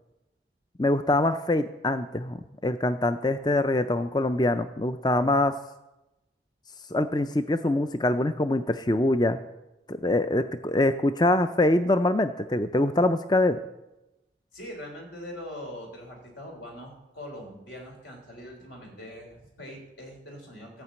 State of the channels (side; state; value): both; normal; correlation 0.64